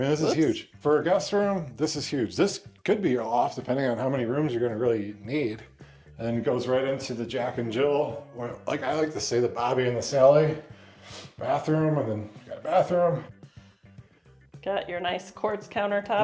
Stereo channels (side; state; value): both; identical; correlation 1.00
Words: this is huge. For a guest room, this is huge. This could be your loft, depending on how many rooms you're gonna really need. And then it goes right into the Jack and Jill, or like I like to say, the Bobby and the Sally bathroom, and then you got a bathroom. Got your nice quartz